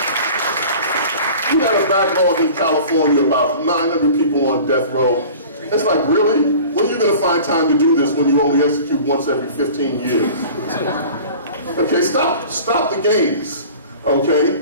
We got a backlog in California, about 900 people on death row. It's like, really? When are you going to find time to do this when you only execute once every 15 years? Okay, stop the games,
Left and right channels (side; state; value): both; inverted; correlation -0.42